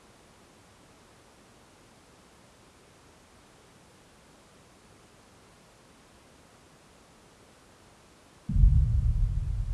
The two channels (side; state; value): both; identical; correlation 1.00